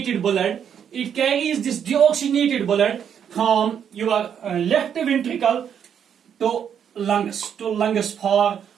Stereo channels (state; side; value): quieter; left; 8.3 dB